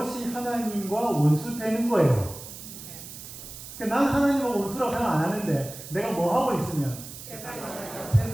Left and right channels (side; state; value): right; noise; hiss, 13 dB below the sound